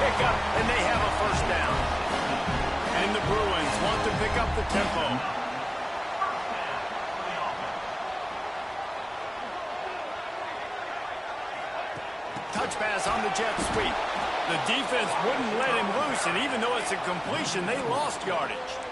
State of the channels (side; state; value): both; identical; correlation 1.00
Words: and they have a first down. And the Bruins want to pick up the tempo. Touch pass on the jet sweep. The defense wouldn't let him loose, and even though it's a completion, they lost yardage.